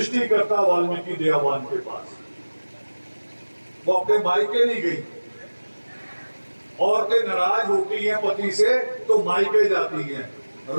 वाल्मीकि दयावान के पास? वो अपने मायके नहीं गई। औरतें नाराज होती हैं पति से तो मायके जाती हैं।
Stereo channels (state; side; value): inverted; both; correlation -1.00